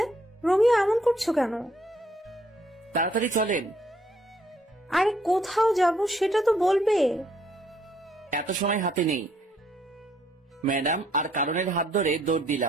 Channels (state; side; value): normal; both; correlation 0.68